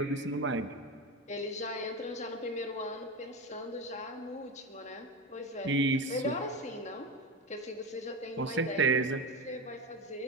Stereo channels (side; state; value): both; normal; correlation 0.20